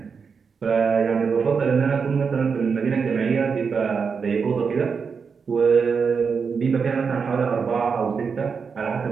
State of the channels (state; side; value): quieter; left; 5.7 dB